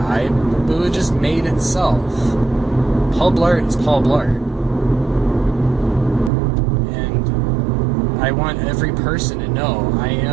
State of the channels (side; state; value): left; drops out; at 6.3 s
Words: but it just made itself. Paul Blart is Paul Blart. And I want every person to know I